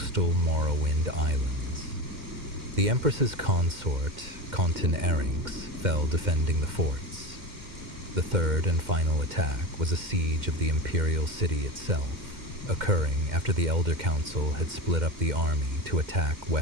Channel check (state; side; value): late; left; 2.1 ms